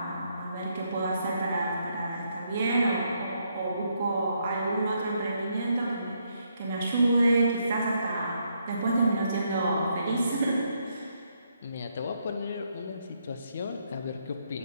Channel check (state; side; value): inverted; both; correlation -0.76